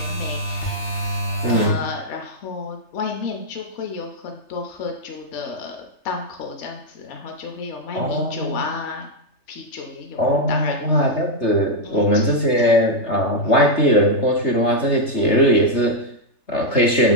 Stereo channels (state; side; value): late; right; 3.3 ms